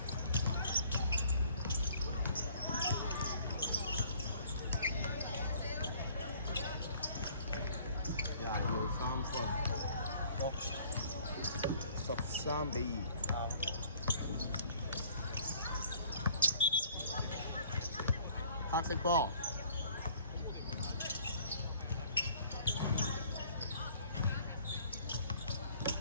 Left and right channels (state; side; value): inverted; both; correlation -0.56